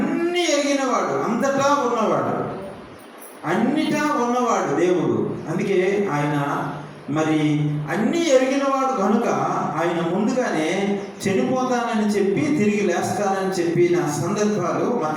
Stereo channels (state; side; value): identical; both; correlation 1.00